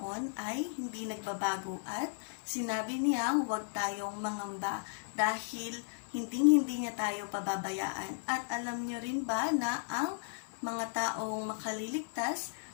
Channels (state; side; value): silent; right; 54 dB below the other